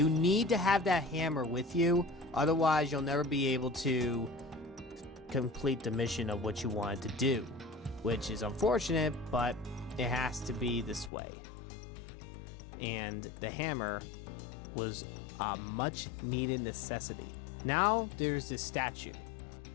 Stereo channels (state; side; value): drops out; right; at 11.1 s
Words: need to have that hammer with you, otherwise you'll never be able to complete the mission of what you wanted to do, which is unfortunate, but it has to be this way. And the hammer was a much needed necessity. Now there's this statue.